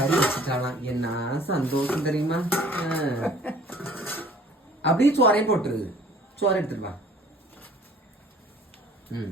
வச்சுட்டாலாம். என்ன சந்தோஷம் தெரியுமா? அப்படியே சோறையும் போட்டுருது. சோறை எடுத்துருவா.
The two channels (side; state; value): both; normal; correlation 0.52